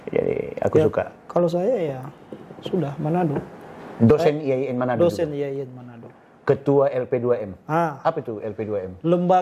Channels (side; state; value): both; identical; correlation 1.00